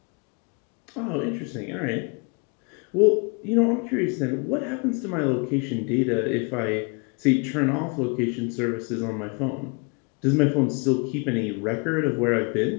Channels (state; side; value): quieter; right; 32.3 dB